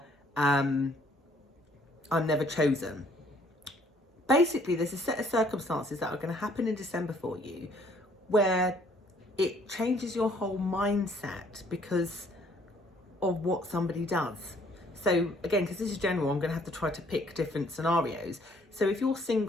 I'm never chosen. Basically, there's a set of circumstances that are going to happen in December for you where it changes your whole mindset because of what somebody does. So again, because this is general, I'm going to have to try to pick different scenarios. So if you're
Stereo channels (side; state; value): both; normal; correlation 0.62